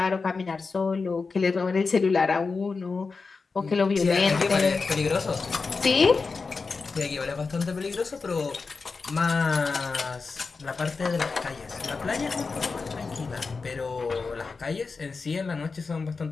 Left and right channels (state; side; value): quieter; right; 4.5 dB